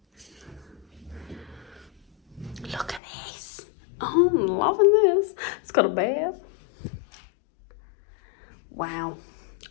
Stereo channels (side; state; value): right; drops out; at 3.0 s